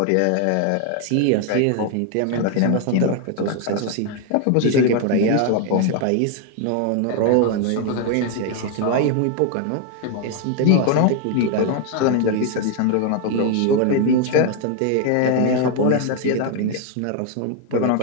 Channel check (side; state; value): both; different; correlation 0.01